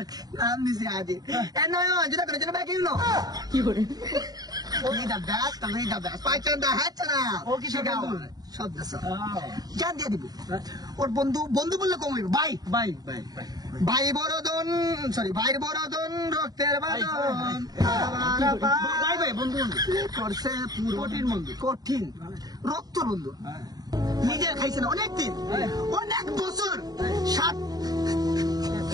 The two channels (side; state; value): left; late; 0.19 ms